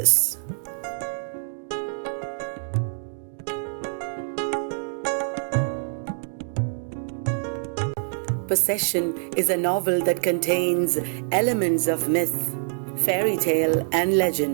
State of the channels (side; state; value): left; silent; digital silence